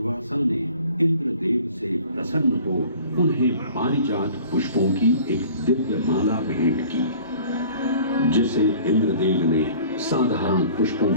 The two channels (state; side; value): inverted; both; correlation -0.48